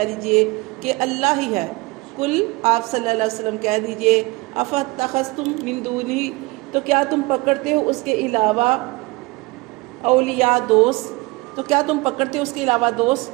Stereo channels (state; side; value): quieter; left; 24.1 dB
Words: دیجئے کہ اللہ ہی ہے قل آپ صلی اللہ علیہ وسلم کہہ دیجئے افاتخذتم من دونہ تو کیا تم پکڑتے ہو اس کے علاوہ اولیاء دوست تو کیا تم پکڑتے ہو اس کے علاوہ